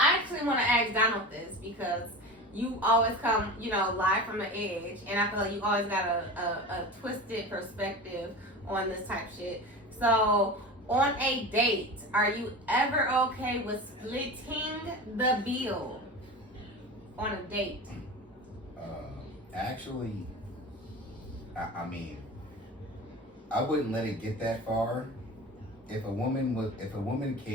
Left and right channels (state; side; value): normal; both; correlation 0.31